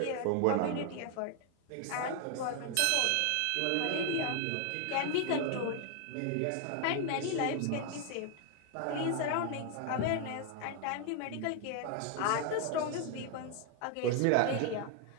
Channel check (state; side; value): different; both; correlation 0.01